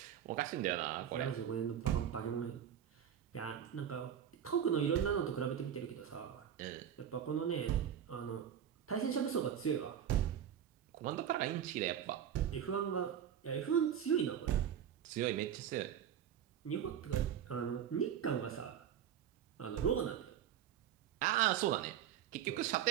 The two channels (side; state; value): left; quieter; 9.4 dB